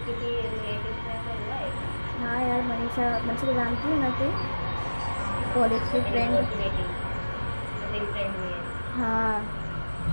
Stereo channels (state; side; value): inverted; both; correlation -1.00